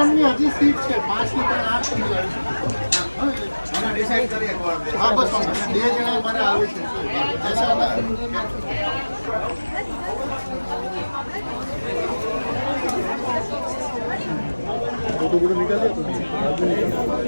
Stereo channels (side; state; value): both; inverted; correlation -1.00